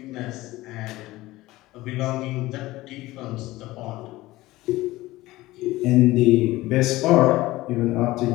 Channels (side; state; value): right; quieter; 18.2 dB